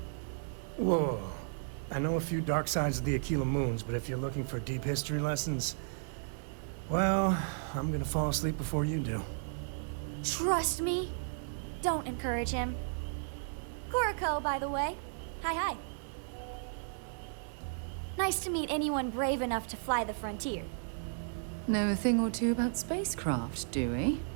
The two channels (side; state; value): left; silent; digital silence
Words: Whoa. I know a few dark sides of the Akila Moons, but if you're looking for deep history lessons, well, I'm gonna fall asleep before you do. Trust me. Don't encourage him. Coe, by the way. Hi. Nice to meet anyone brave enough to fly the frontier. Know a thing or two about spacecraft, do we?